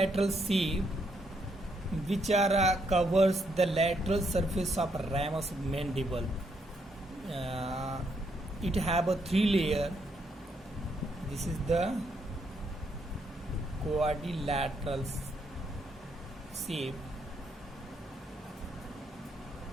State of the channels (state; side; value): normal; both; correlation 0.75